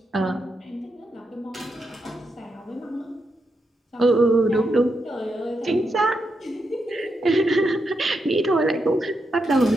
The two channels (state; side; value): normal; both; correlation 0.84